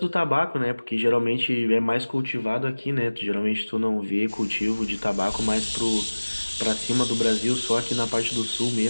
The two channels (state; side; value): inverted; both; correlation -1.00